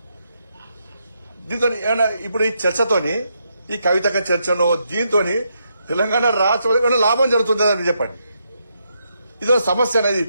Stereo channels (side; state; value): both; inverted; correlation -0.79